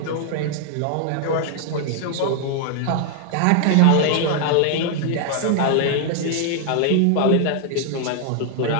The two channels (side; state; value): both; different; correlation 0.00